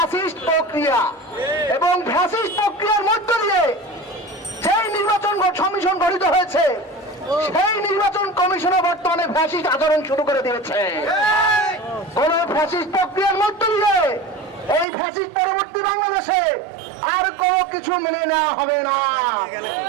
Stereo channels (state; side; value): drops out; left; at 14.9 s